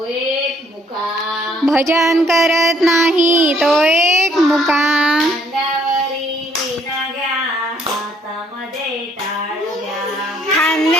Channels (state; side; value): normal; both; correlation 0.65